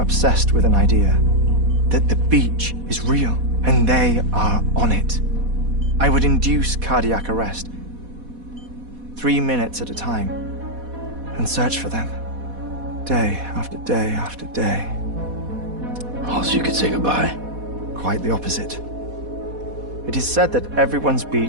with an idea that the beach is real and they are on it. I would induce cardiac arrest, 3 minutes at a time, and search for them, day after day after day. Also, you could say goodbye. Quite the opposite. It is said that everyone's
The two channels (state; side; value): late; left; 4.1 ms